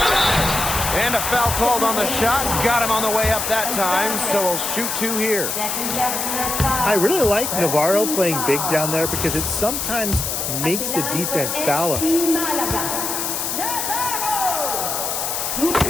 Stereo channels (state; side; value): noise; left; hiss, 2 dB below the sound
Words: And a foul called on the shot. Got him on the way up that time, so we'll shoot two here. I really like Navarro playing big down there because it sometimes makes the defense foul him.